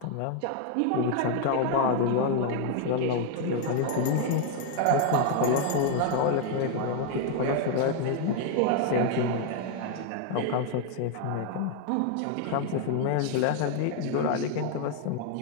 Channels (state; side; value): different; both; correlation 0.00